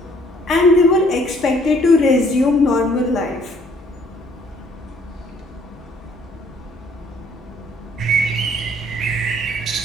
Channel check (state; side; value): normal; both; correlation 0.62